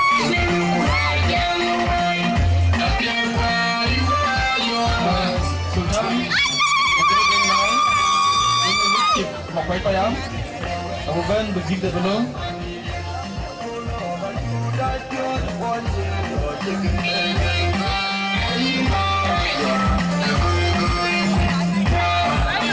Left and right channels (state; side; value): identical; both; correlation 1.00